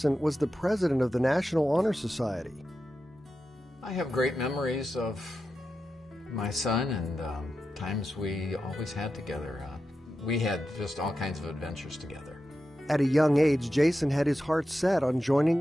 and was the president of the National Honor Society. I have great memories of my son and times we always had together. We had just all kinds of adventures together. At a young age, Jason had his heart set on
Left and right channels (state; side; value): normal; both; correlation 0.90